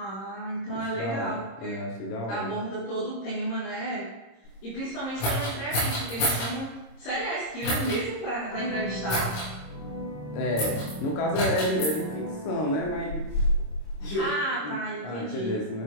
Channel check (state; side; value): late; right; 26 ms